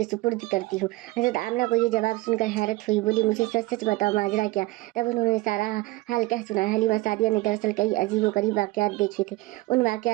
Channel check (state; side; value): quieter; left; 20.6 dB